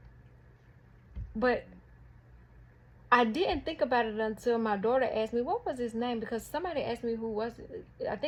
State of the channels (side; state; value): both; identical; correlation 1.00